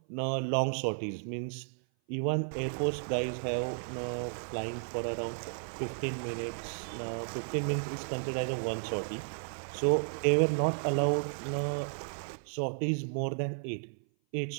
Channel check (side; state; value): left; silent; 56 dB below the other